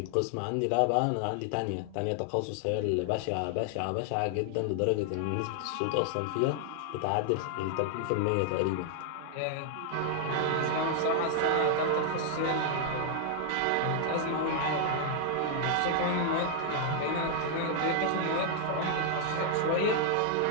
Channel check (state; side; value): different; both; correlation 0.00